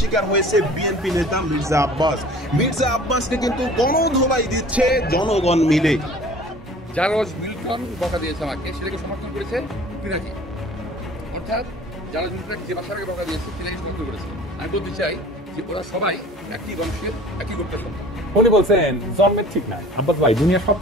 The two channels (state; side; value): normal; both; correlation 0.46